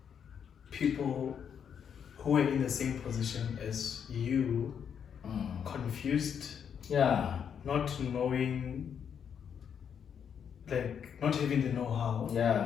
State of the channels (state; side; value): quieter; right; 7.8 dB